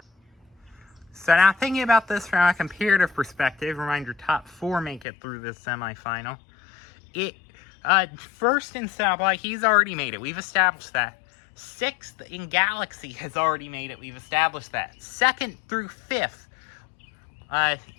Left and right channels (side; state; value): right; drops out; at 5.1 s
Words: So now thinking about this from a comparative perspective, reminder, top four make it through this semifinal. First in Stoplight, he's already made it. We've established that. Sixth in Galaxy has already made it. We've established that. Second through fifth,